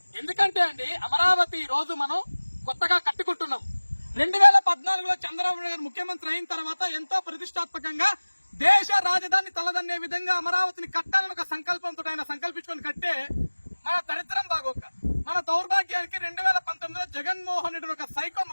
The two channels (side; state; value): both; inverted; correlation -1.00